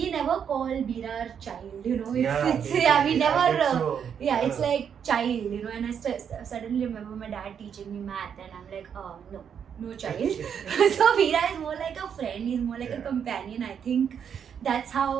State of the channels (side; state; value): left; quieter; 7.8 dB